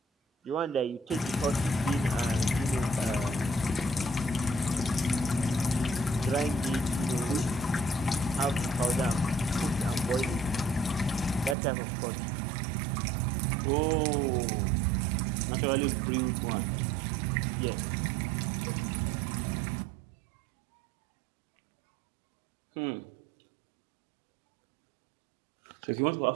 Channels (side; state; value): left; drops out; at 11.6 s